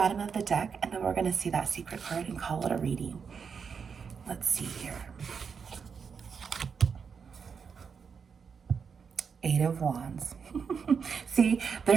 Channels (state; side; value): quieter; left; 6.1 dB